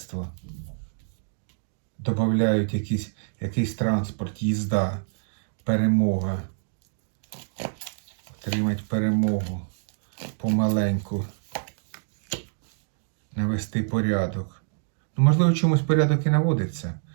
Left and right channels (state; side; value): silent; left; digital silence